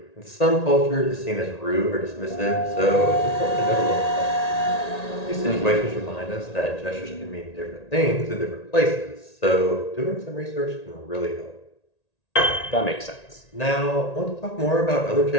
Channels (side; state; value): right; late; 1.8 ms